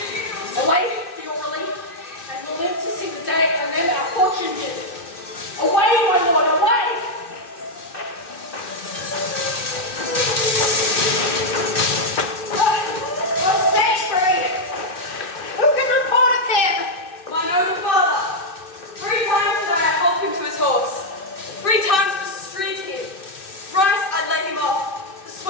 Away for your relief, and we'll live to see the day and then our fortune did. Away, my lord, away! Who can report of him? My noble father. 3 times did I help him to his horse. 3 times pursued him. Thrice I led him off,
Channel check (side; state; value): right; late; 2.6 ms